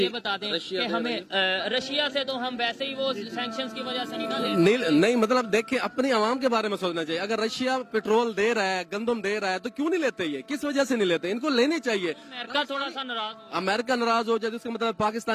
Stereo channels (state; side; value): identical; both; correlation 1.00